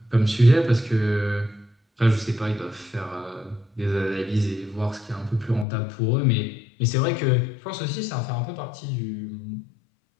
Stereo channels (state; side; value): drops out; right; at 5.7 s